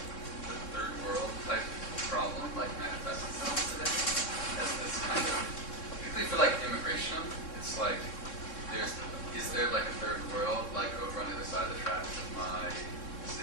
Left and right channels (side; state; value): right; late; 3.6 ms